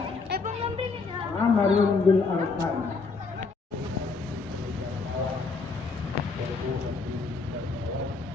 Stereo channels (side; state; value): right; quieter; 4.3 dB